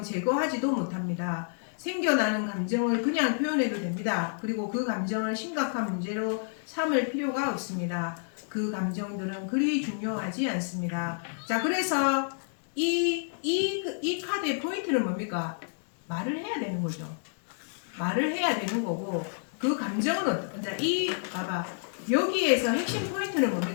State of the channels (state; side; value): silent; right; digital silence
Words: 제거하지도 못합니다. 생겨나는 감정을 그냥 표현해도 됩니다. 그리고 그 감정을 심각한 문제로 삼을 필요가 없습니다. 그 감정들은 그리 중요하지 않습니다. 자, 그래서 이 카드의 포인트는 뭡니까? 말을 해야 되는 거죠. 말을 해야 되는 거고, 그 감정은 봐봐. 여기에서 핵심 포인트는